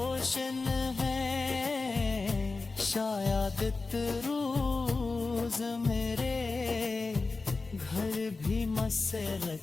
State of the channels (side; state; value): right; quieter; 3.8 dB